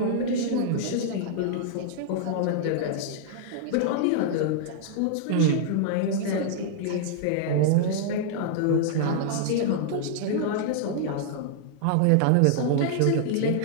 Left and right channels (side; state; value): both; different; correlation -0.01